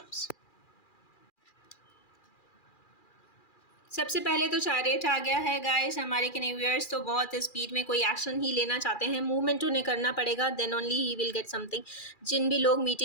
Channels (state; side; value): late; right; 2.4 ms